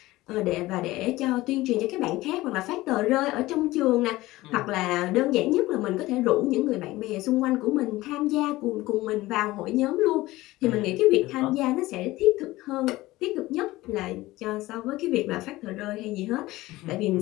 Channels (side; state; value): right; quieter; 18.3 dB